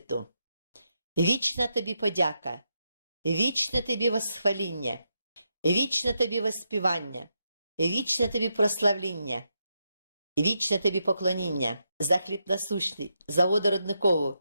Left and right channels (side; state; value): both; inverted; correlation -0.83